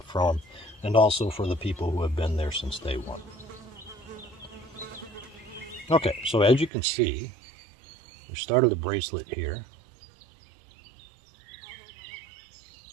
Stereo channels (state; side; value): drops out; left; at 6.7 s